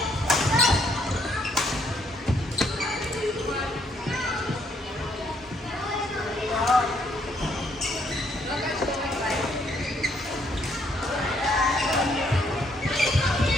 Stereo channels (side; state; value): both; normal; correlation 0.70